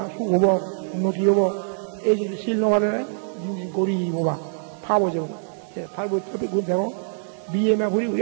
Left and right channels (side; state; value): left; silent; digital silence